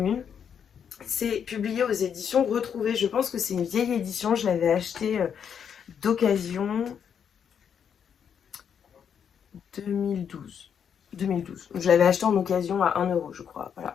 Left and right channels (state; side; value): quieter; right; 7.8 dB